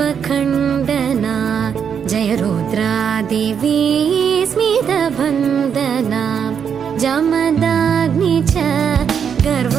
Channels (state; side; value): quieter; left; 7.5 dB